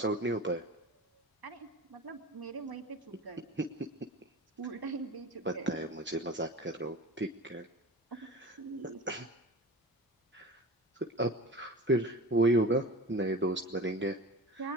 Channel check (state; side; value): normal; both; correlation 0.36